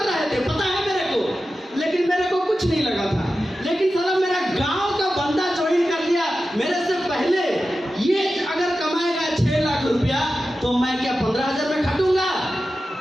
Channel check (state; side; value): normal; both; correlation 0.93